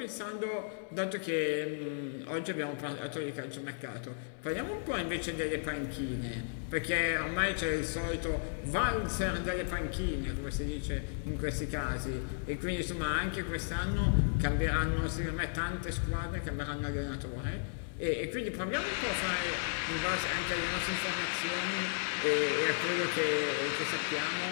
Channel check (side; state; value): right; silent; digital silence